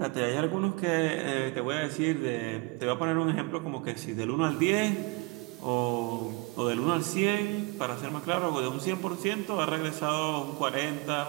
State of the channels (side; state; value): left; quieter; 27.2 dB